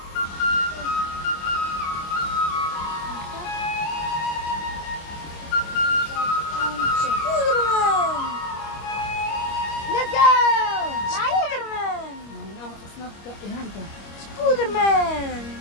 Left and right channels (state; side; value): late; right; 25 ms